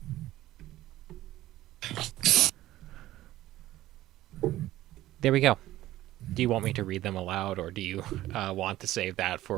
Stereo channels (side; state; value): left; quieter; 15.2 dB